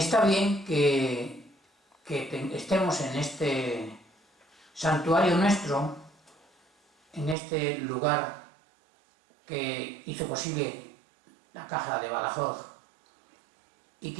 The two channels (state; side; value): drops out; left; at 7.4 s